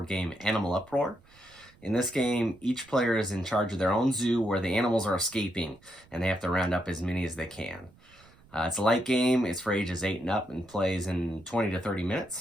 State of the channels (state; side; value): noise; right; rumble, 27 dB below the sound